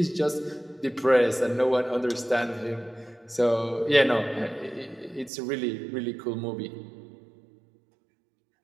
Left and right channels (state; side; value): drops out; left; at 5.3 s